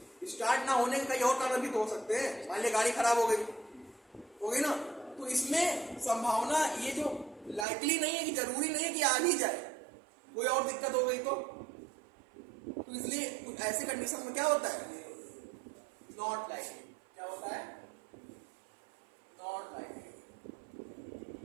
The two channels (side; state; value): left; drops out; at 7.7 s